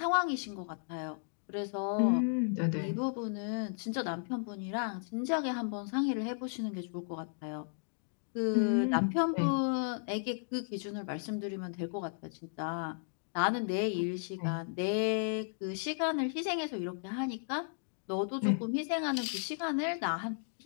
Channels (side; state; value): right; silent; digital silence